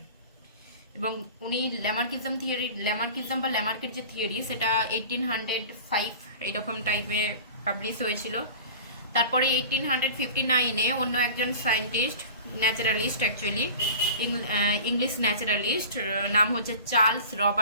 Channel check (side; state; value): both; inverted; correlation -0.38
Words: এবং উনি ল্যামার্কিজম বা ল্যামার্কের যে থিওরি সেটা 1805 এইরকম টাইপে পাবলিশ হয়েছিল। তারপরে 1859-এ অন্য একজন scientist, naturalist, actually English naturalist, নাম হচ্ছে চার্লস